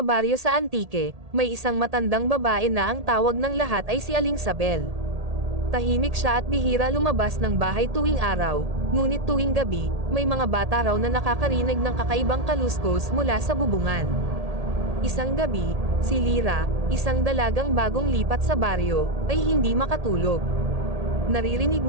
baryo sa Antique, may isang matandang babae na ang tawag ng lahat ay si Aling Sabel. Tahimik siya at bihira lumabas ng bahay tuwing araw, ngunit tuwing gabi, may mga bata raw na nakakarinig ng kakaibang kaluskos mula sa bubungan. Isang gabi, si Lyra, isang dalagang bagong lipat sa baryo, ay hindi makatulog. Naririnig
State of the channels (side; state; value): left; late; 1.8 ms